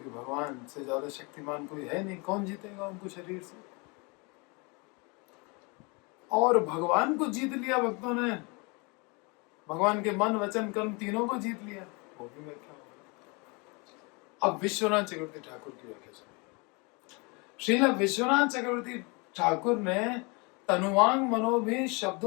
भगवान से ज्यादा शक्तिमान कोई है नहीं, कौन जीतेगा उनको शरीर से? और भगवान को जीत लिया भक्तों ने, भगवान के मन वचन कर्म तीनों को जीत लिया। वो भी व्याख्या हो। अब विश्वनाथ चक्रवर्ती ठाकुर की व्याख्या सुनिए। श्रील विश्वनाथ चक्रवर्ती ठाकुर ने तनुवांग मनोभी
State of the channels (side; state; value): right; quieter; 29.6 dB